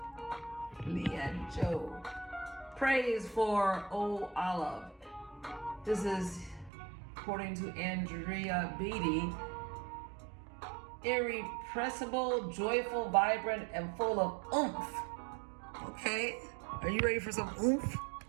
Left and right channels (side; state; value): left; drops out; at 6.7 s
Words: Leanne Joe. Praise for Oh Olive. This is, according to Andrea Beatty, irrepressible, joyful, vibrant, and full of oomph. Okay, are you ready for some oomph